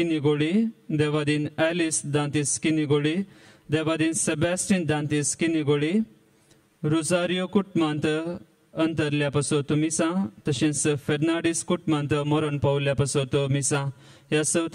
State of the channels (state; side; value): identical; both; correlation 1.00